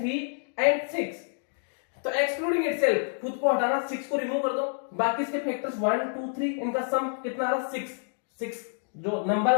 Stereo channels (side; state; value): right; silent; digital silence